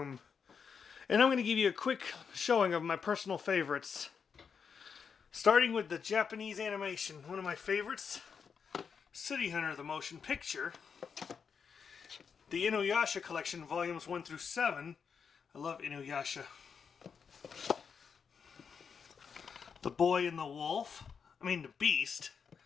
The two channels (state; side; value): quieter; right; 6.3 dB